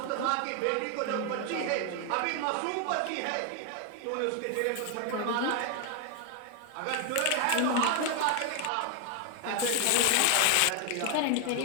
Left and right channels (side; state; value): both; different; correlation 0.00